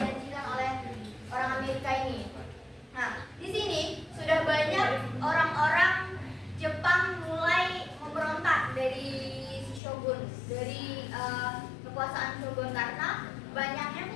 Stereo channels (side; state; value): right; drops out; at 9.8 s